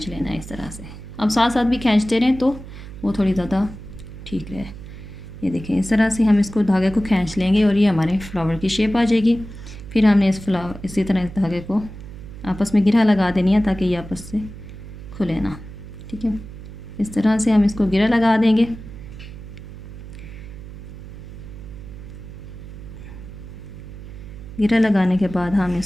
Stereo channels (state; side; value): noise; right; hum, 13 dB below the sound